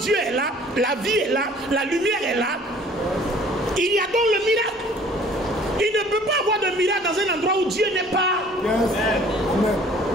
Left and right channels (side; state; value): both; normal; correlation 0.53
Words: Dieu est là, la vie est là, la lumière est là, il y a donc le miracle. Il ne peut pas avoir de miracle dans un endroit où Dieu n'est pas.